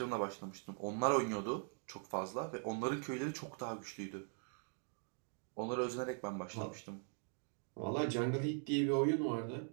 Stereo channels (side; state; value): left; silent; 50 dB below the other